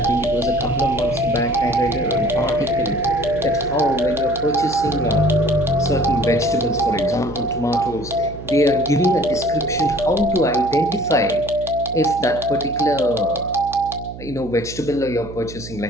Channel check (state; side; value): noise; right; hum, 13 dB below the sound